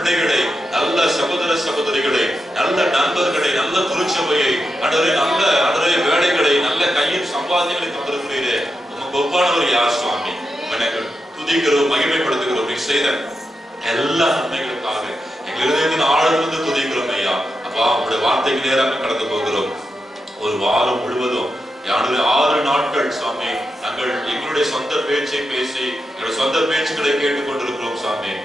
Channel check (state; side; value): normal; both; correlation 0.88